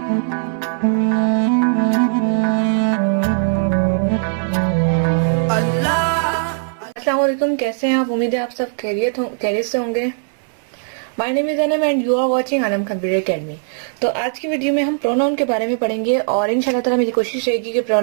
वालेकुम, कैसे हैं आप? उम्मीद है आप सब खैरियत से होंगे। My name is Anam and you are watching Anam computer academy. तो आज की वीडियो में हम प्रोनाउन के बारे में पढ़ेंगे और इंशाल्लाह ताला मेरी कोशिश रहेगी कि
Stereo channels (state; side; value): silent; left; 61 dB below the other